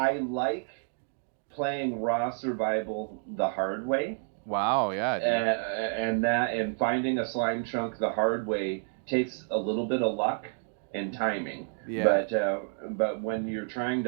like playing raw survival the hard way. Wow, yeah, dude. And finding a slime chunk the hard way takes a little bit of luck and timing. Yeah. But when you're trying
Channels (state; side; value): silent; left; 58 dB below the other